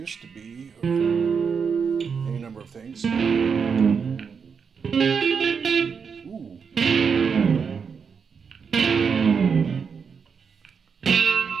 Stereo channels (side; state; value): left; quieter; 6.1 dB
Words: to be, or any number of things. Ooh.